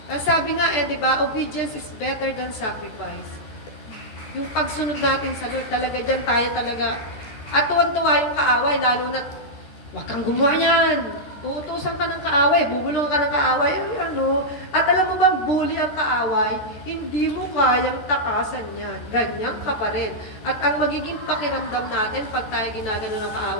Ang sabi nga di ba, obedience is better than sacrifice. Yung pagsunod natin sa Lord, talaga dyan tayo talaga. At tuwan-tuwa yung kaaway, lalo na huwag kang gumawa yan. Uutusan ka ng kaaway, bubulong ka ng kaaway. At alam mo bang bully ang kaaway? Hindi mo kayang takasan yan. Ganyan ka pa rin. At ang magiging pakiramdam natin pag tayo ginagano ng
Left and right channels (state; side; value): late; right; 14 ms